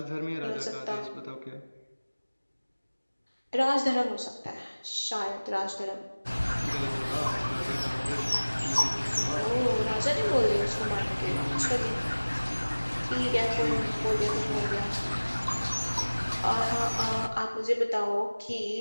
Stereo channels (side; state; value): both; inverted; correlation -1.00